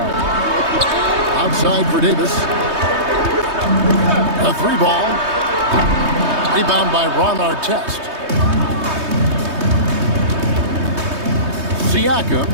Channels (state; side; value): late; left; 3.2 ms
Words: Outside for Davis. A 3 ball. Rebound by Ron Artest. Siakam